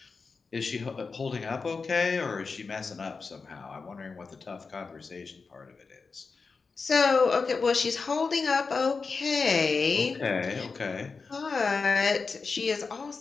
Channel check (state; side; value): quieter; right; 4.6 dB